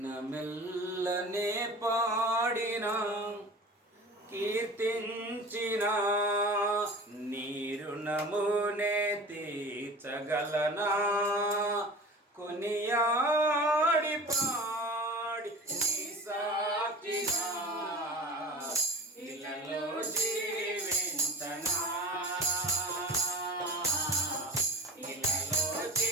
పాడినా కీర్తించిన నీ రుణమునే తీర్చగలనా, కొనియాడి పాడి నీ సాక్షిగా ఇలలో జీవించనా, ఇలలో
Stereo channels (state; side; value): normal; both; correlation 0.37